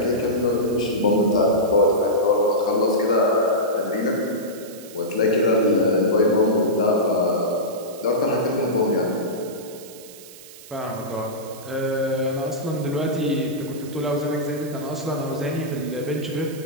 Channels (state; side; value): noise; right; hiss, 18 dB below the sound